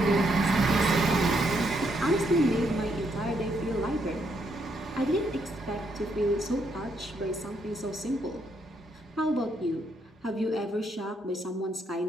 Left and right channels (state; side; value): normal; both; correlation 0.75